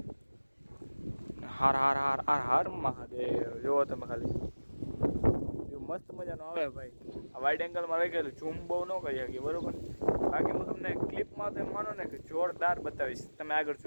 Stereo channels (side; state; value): both; inverted; correlation -1.00